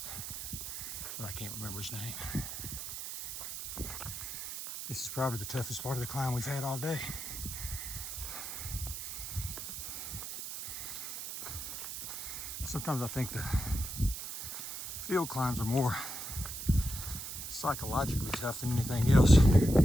but I can't remember his name. This is probably the toughest part of the climb we've had all day. Sometimes I think the field climbs are more psychologically tough than anything else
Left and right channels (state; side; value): noise; right; hiss, 7 dB below the sound